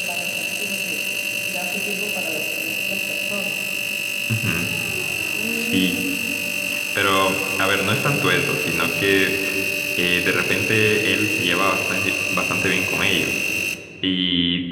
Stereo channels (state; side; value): identical; both; correlation 1.00